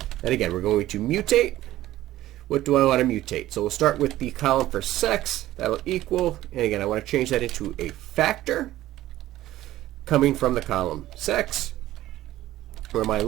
And again, we're going to mutate. What do I want to mutate? So we'll start with the column for sex. That'll equal, and again, I want to change that into a factor coming from the column sex, where my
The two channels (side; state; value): left; quieter; 14.9 dB